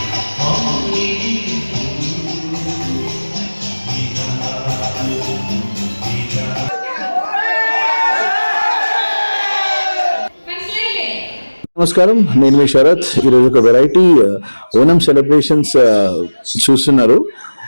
నమస్కారం, నేను మీ శరత్. ఈరోజు ఒక వెరైటీ ఓనం సెలబ్రేషన్స్ చూస్తున్నారు.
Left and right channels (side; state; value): both; inverted; correlation -1.00